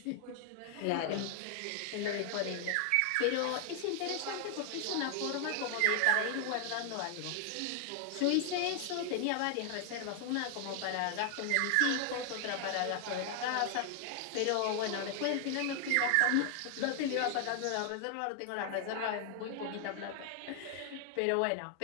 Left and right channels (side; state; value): both; different; correlation 0.00